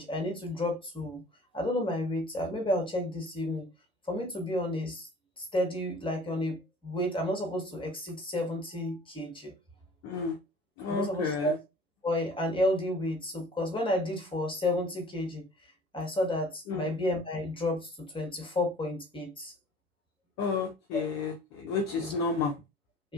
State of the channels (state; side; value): normal; both; correlation 0.49